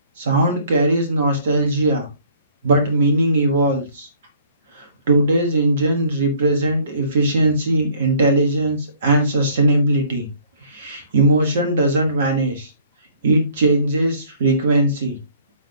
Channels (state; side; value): inverted; both; correlation -0.57